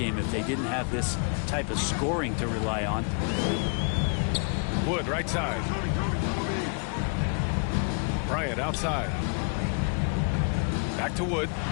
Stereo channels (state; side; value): quieter; right; 39.2 dB